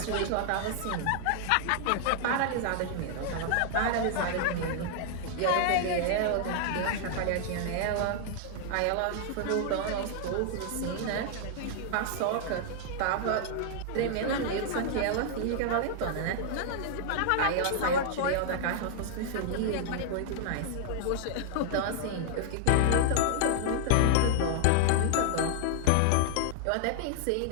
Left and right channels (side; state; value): both; different; correlation -0.01